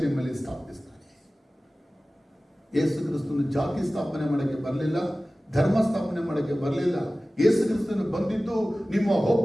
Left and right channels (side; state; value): both; normal; correlation 0.97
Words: ನಿಮ್ಮಲ್ಲಿ ಸ್ಥಾಪಿಸ್ತಾನೆ. ಯೇಸು ಕ್ರಿಸ್ತನು ಜಾತಿ ಸ್ಥಾಪನೆ ಮಾಡೋಕ್ಕೆ ಬರಲಿಲ್ಲ, ಧರ್ಮ ಸ್ಥಾಪನೆ ಮಾಡೋಕ್ಕೆ ಬರಲಿಲ್ಲ. ಯೇಸು ಕ್ರಿಸ್ತನು ಬಂದಿದ್ದು ನಿಮ್ಮ